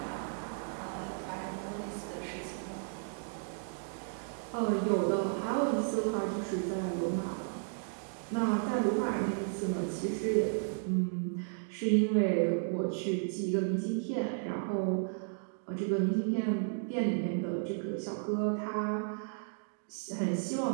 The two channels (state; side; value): silent; left; digital silence